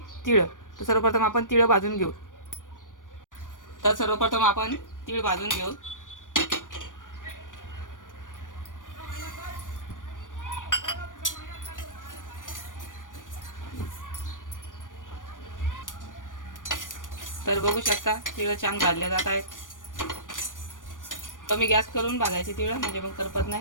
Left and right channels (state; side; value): late; right; 0.88 ms